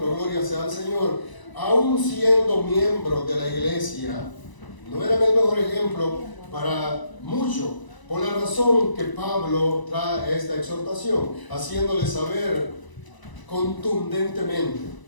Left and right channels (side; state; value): right; late; 1.0 ms